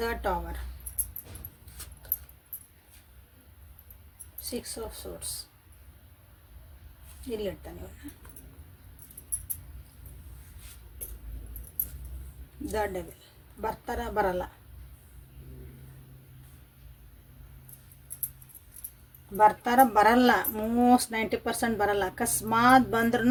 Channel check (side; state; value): both; identical; correlation 1.00